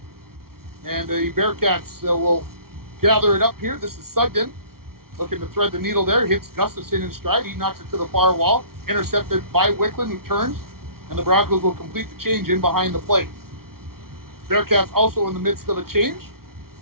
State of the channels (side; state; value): left; late; 0.93 ms